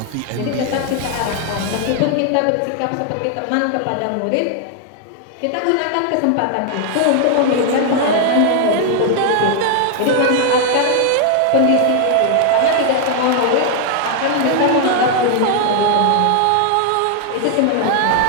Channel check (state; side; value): different; both; correlation 0.00